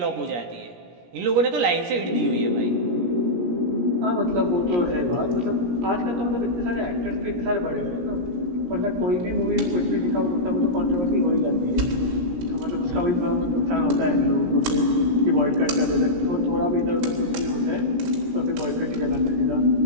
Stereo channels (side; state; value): left; late; 17 ms